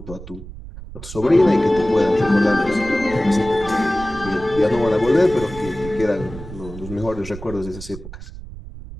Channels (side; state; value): right; noise; rumble, 13 dB below the sound